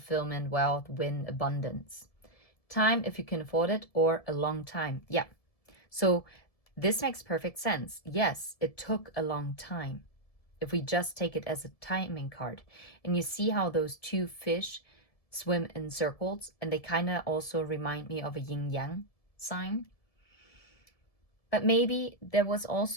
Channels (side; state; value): right; late; 1.7 ms